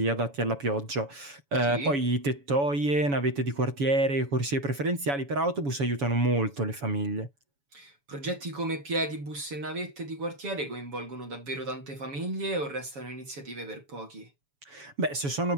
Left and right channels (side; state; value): left; late; 7.1 ms